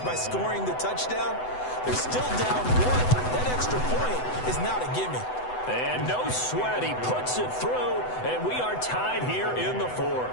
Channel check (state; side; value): late; right; 8.0 ms